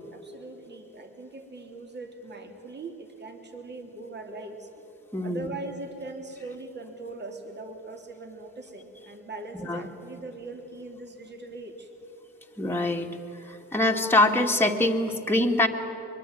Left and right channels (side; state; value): both; normal; correlation 0.44